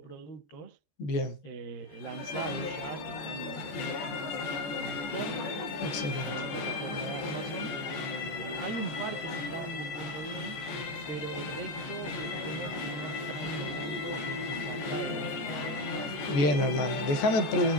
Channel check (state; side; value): late; right; 14 ms